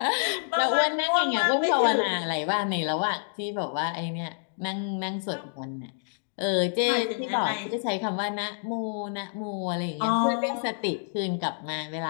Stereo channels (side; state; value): right; silent; digital silence